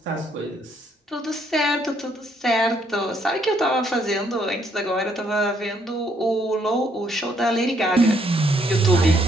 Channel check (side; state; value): both; normal; correlation 0.70